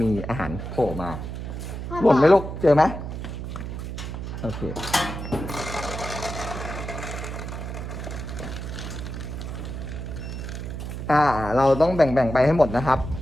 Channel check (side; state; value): right; noise; hum, 7 dB below the sound